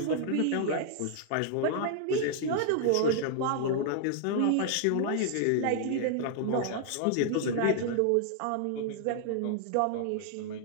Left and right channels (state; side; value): different; both; correlation -0.01